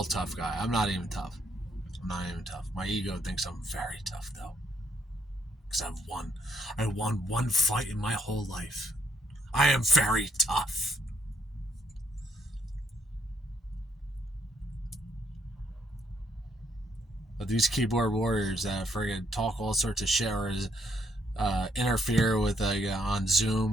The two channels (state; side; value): normal; both; correlation 0.71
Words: I'm not even tough. My ego thinks I'm very tough, though, because I won one fight in my whole life. I am very tough. But these keyboard warriors that friggin' talk all sorts of shit or interfere with on